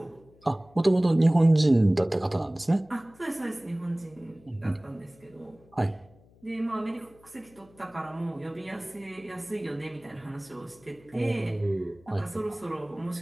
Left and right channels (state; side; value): noise; left; hum, 28 dB below the sound